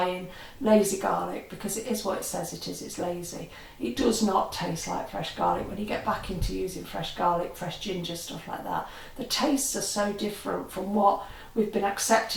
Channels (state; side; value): identical; both; correlation 1.00